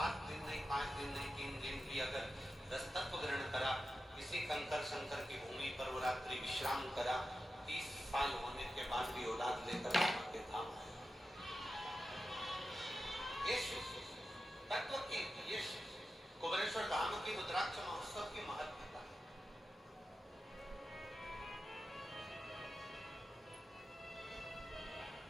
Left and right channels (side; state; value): both; normal; correlation 0.92